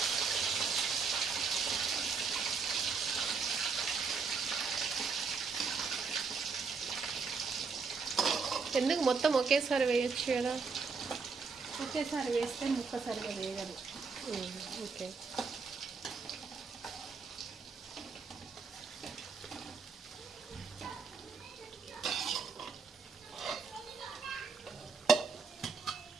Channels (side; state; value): left; quieter; 5.1 dB